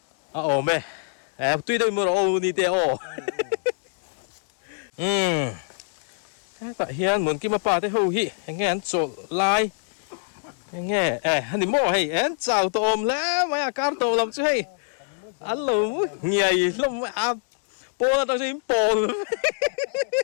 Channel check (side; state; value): right; silent; digital silence